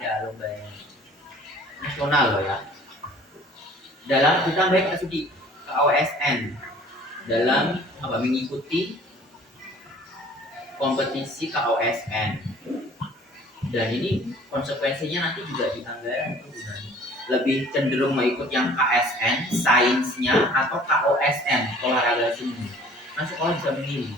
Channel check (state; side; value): normal; both; correlation 0.51